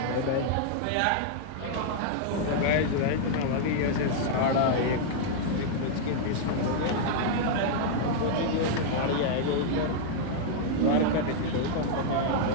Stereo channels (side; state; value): both; different; correlation -0.01